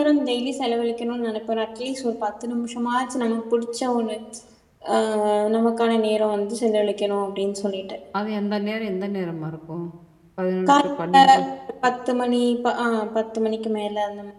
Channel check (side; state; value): both; identical; correlation 1.00